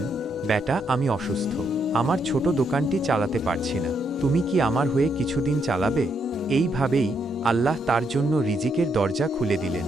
বেটা, আমি অসুস্থ, আমার ছোট দোকানটি চালাতে পারছি না, তুমি কি আমার হয়ে কিছুদিন চালাবে? এইভাবেই আল্লাহ তার জন্য রিজিকের দরজা খুলে দিলেন,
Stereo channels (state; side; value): normal; both; correlation 0.77